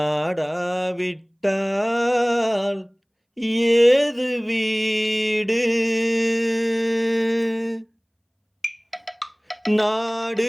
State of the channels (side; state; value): both; identical; correlation 1.00